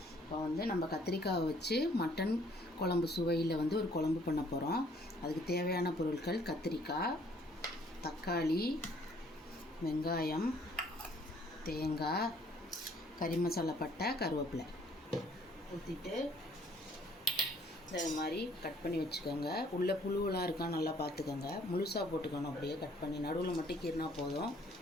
இப்போ வந்து நம்ம கத்திரிக்காயை வச்சு மட்டன் குழம்பு சுவையில் வந்து ஒரு குழம்பு பண்ண போகிறோம். அதுக்கு தேவையான பொருட்கள் கத்திரிக்காய், தக்காளி, வெங்காயம், தேங்காய், கறி மசாலா பட்டை, கருவேப்பிலை ஊற்றிட்டு இந்த மாதிரி கட் பண்ணி வச்சுக்கோங்க. உள்ளே புழுவெலாம் இருக்கா நல்லா பார்த்துக்கோங்க. முழுசாக போட்டுக்கணும், அப்படியே கட் பண்ணி நடுவில் மட்டும் கீறினா போதும்.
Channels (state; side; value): normal; both; correlation 0.61